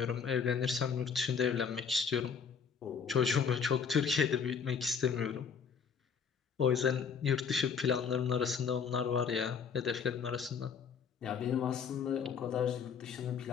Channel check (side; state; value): right; quieter; 6.5 dB